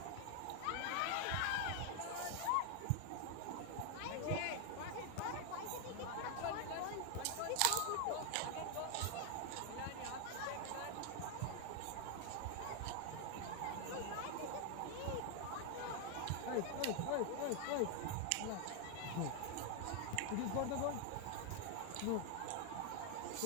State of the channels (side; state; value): both; different; correlation 0.01